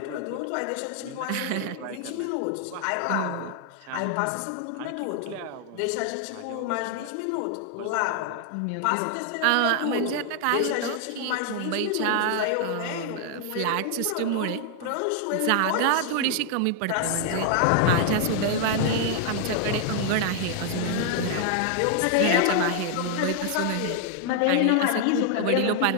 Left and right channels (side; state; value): both; different; correlation 0.00